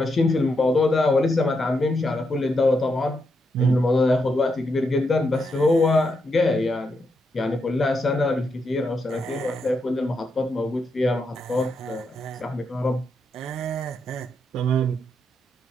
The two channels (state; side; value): normal; both; correlation 0.82